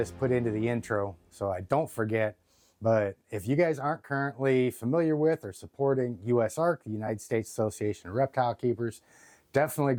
put into the intro so I don't forget, but if you guys aren't currently familiar with or supporting USARK, the United States Association of Reptile Keepers, definitely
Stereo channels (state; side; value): identical; both; correlation 1.00